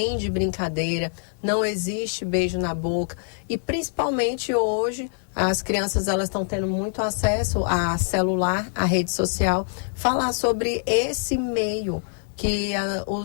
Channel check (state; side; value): silent; right; 62 dB below the other